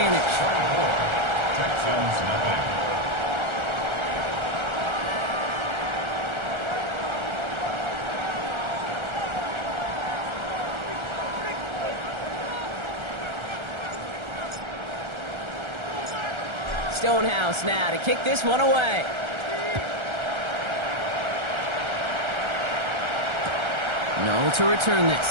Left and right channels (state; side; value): late; left; 1.3 ms